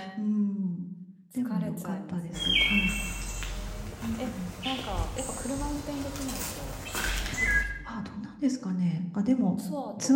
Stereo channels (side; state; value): both; identical; correlation 1.00